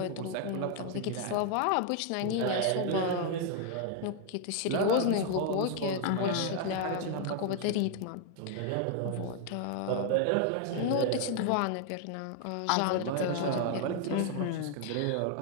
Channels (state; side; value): different; both; correlation 0.00